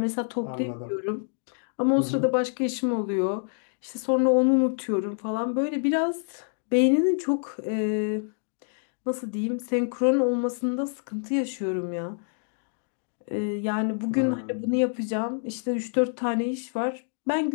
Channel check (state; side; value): silent; right; digital silence